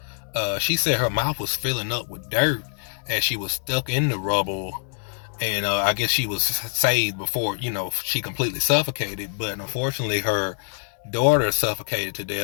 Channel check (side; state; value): right; silent; 62 dB below the other